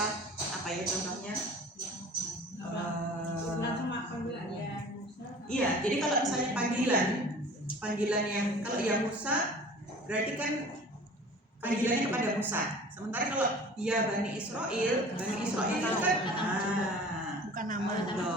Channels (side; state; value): both; normal; correlation 0.44